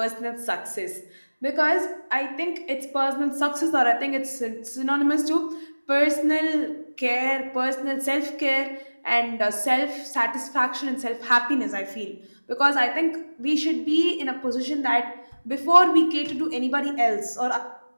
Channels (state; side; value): inverted; both; correlation -1.00